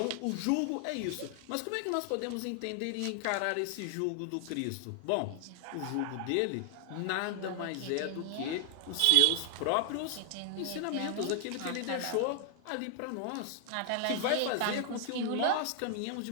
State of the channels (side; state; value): both; different; correlation 0.00